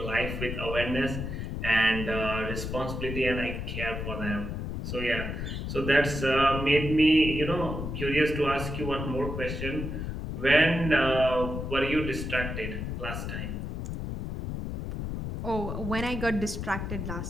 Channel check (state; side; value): noise; left; rumble, 5 dB below the sound